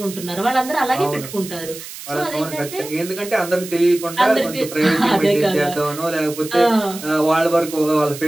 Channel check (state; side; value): noise; right; hiss, 13 dB below the sound